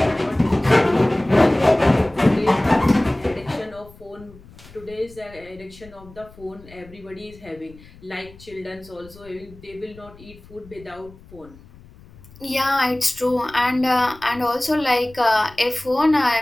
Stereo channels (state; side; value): noise; left; rumble, 22 dB below the sound